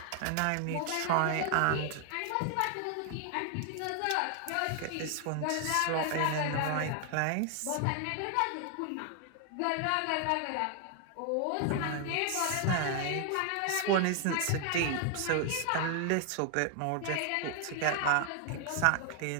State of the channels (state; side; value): different; both; correlation 0.00